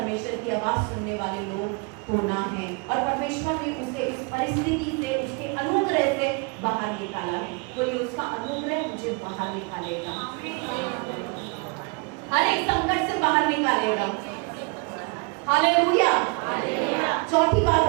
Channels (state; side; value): quieter; left; 32.1 dB